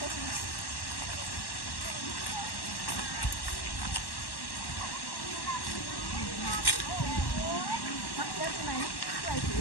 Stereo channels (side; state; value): right; late; 1.1 ms